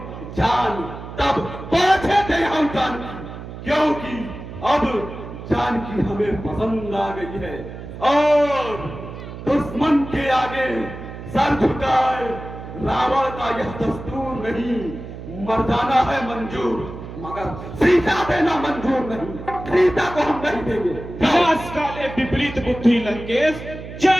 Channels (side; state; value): right; noise; hum, 11 dB below the sound